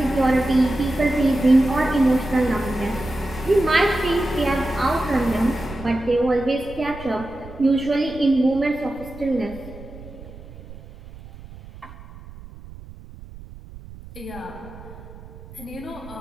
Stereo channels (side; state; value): right; noise; rumble, 17 dB below the sound